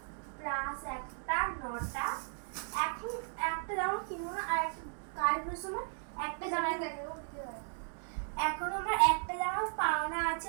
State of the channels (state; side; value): silent; left; 54 dB below the other